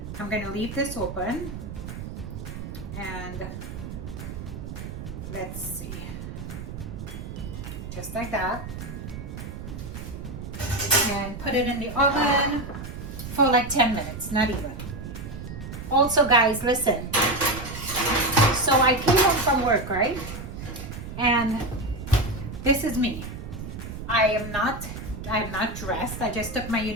I'm gonna leave this open. And let's see. Just like that. And put it in the oven for like 10 minutes, not even. Also, guys, listen. So I came home from work, right? And this is me. I'm not dressed. I just took my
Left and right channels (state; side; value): noise; right; rumble, 9 dB below the sound